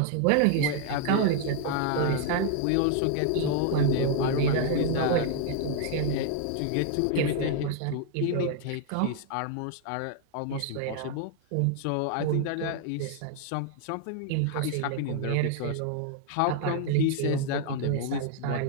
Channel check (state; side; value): different; both; correlation 0.00